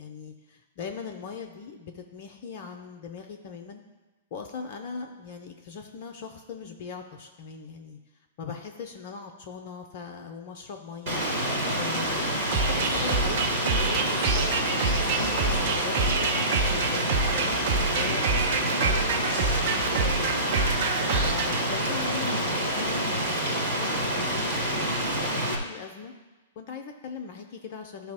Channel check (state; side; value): inverted; both; correlation -0.32